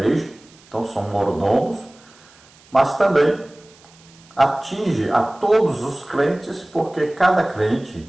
então são mordomos, mas também atinge a todos os crentes, porque cada crente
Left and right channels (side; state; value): right; noise; hiss, 27 dB below the sound